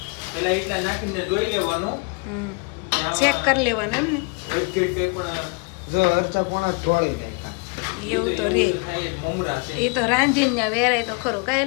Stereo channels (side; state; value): right; quieter; 32.6 dB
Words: પેલા એટલા નાખીને જોઈ લેવાનું, ચેક કરી લેવાનું એમ ને. જો અરચા પોણા ઢોળી નાખ્યા, એવું તો રે, મમરા છે એ તો રાંધીને ત્યાં વેરાય તો ખરું.